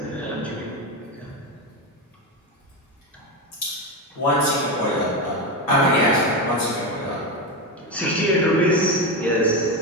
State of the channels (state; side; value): normal; both; correlation 0.14